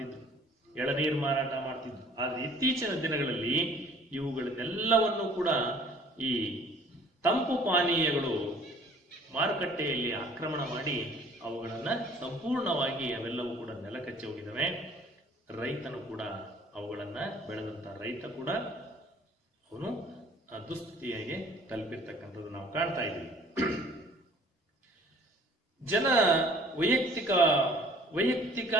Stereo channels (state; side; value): normal; both; correlation 0.54